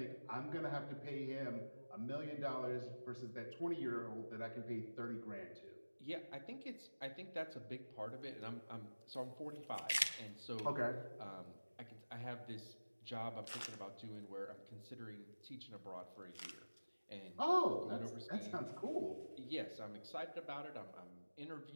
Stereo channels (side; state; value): both; inverted; correlation -1.00